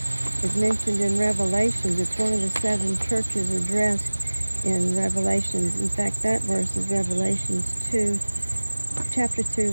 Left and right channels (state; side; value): inverted; both; correlation -1.00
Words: is mentioned in Revelations. It's one of the 7 churches addressed in Revelations. In fact, that verse is Revelations 2, chapter 2,